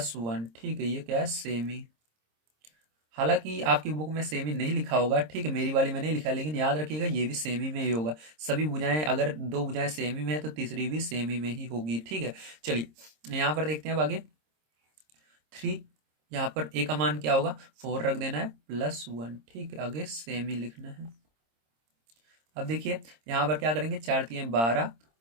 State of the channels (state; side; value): late; left; 26 ms